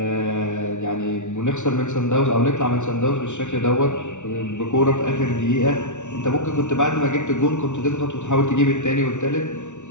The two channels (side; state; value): right; late; 0.84 ms